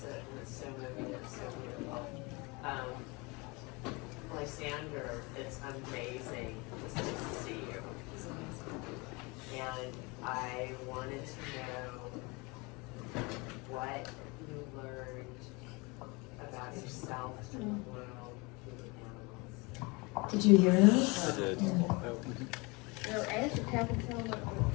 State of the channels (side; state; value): right; quieter; 26.9 dB